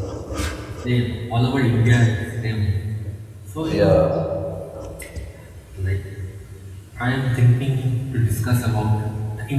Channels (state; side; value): identical; both; correlation 1.00